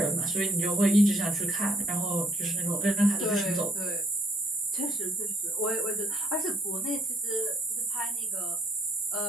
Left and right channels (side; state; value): both; normal; correlation 0.65